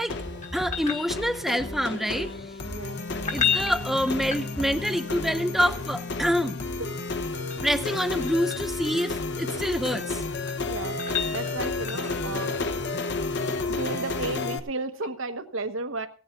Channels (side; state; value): both; normal; correlation 0.61